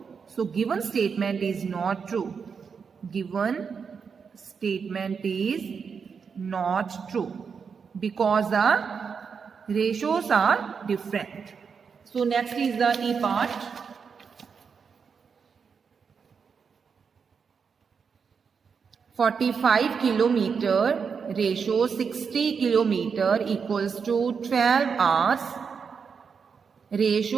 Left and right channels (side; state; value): left; quieter; 6.0 dB